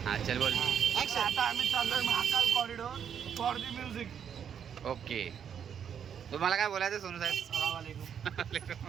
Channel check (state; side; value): quieter; left; 8.1 dB